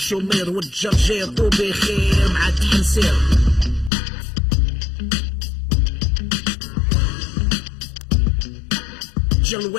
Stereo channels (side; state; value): right; drops out; at 3.9 s